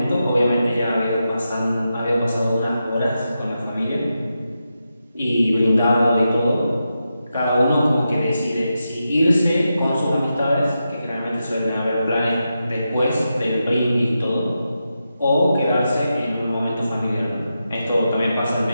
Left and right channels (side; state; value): both; inverted; correlation -0.88